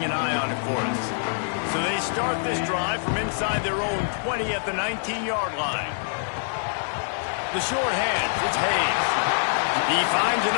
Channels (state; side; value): silent; right; digital silence